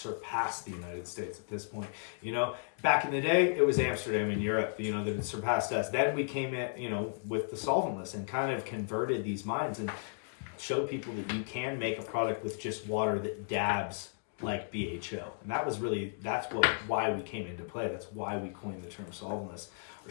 the United States at this point. You know, back in the day, it was Amsterdam in Europe, you know, that had surpassed us. Then we came in, you know, with the solventless and kind of converted these minds and showed people that you can make a product with just water that dabs like BHO. And why we came into play. That's why we coined the term solventless or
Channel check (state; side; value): silent; right; digital silence